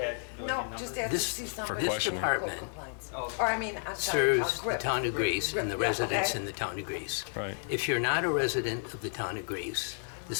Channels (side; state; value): right; silent; 57 dB below the other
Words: no, just ask to see somebody. This department I'm sorry, serves the town of Greece and the Yeah, residents okay. in the town of Greece. Right. If you're not a resident of the town of Greece,